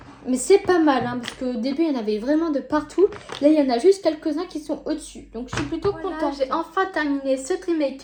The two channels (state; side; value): identical; both; correlation 1.00